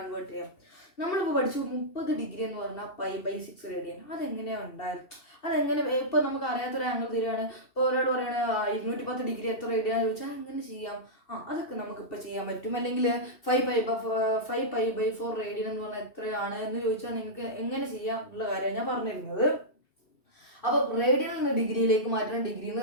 ചെയ്യാം. നമ്മളിപ്പോൾ പഠിച്ചു 30 ഡിഗ്രി എന്ന് പറഞ്ഞാൽ π/6 റേഡിയൻ. അതെങ്ങനെയാണ് ഉണ്ടായത്? അതെങ്ങനെ ഇപ്പൊ നമുക്ക് അറിയാത്തൊരു ആംഗിൾ തരികയാണ്. ഇപ്പോൾ ഒരാൾ പറയണ 210 ഡിഗ്രി എത്ര റേഡിയാന്ന് ചോദിച്ചാൽ എങ്ങനെ ചെയ്യാം? അതൊക്കെ നമുക്കിപ്പോൾ ചെയ്യാൻ പറ്റും. അല്ലെങ്കിൽ 5π/4 റേഡിയൻ എന്ന് പറഞ്ഞാൽ എത്രയാണ് എന്ന് ചോദിച്ചാൽ നിങ്ങൾക്ക് എങ്ങനെ ചെയ്യാം എന്നുള്ള കാര്യമാണ് ഞാൻ പറഞ്ഞിരുന്നത്. അപ്പൊ റേഡിയനിൽ നിന്ന് ഡിഗ്രിയിലേക്ക് മാറ്റണം, ഡിഗ്രിയിൽ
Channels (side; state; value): right; late; 2.7 ms